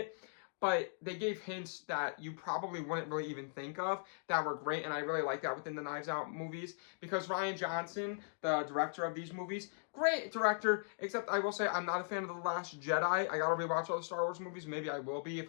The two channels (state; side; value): silent; right; digital silence